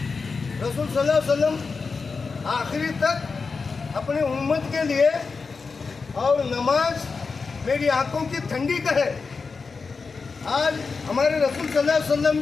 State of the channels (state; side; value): quieter; right; 4.7 dB